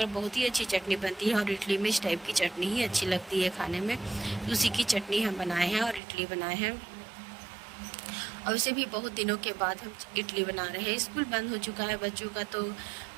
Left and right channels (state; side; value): drops out; left; at 6.0 s